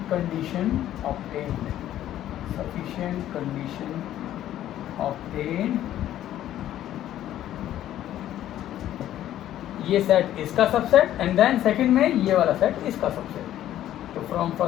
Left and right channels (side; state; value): right; quieter; 12.4 dB